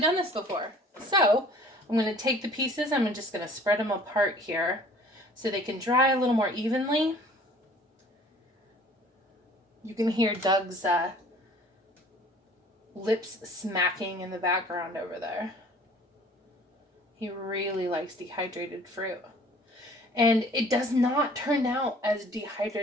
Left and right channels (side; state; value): both; normal; correlation 0.51